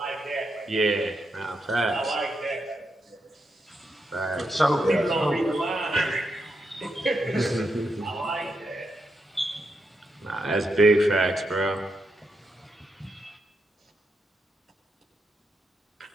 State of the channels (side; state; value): both; normal; correlation 0.83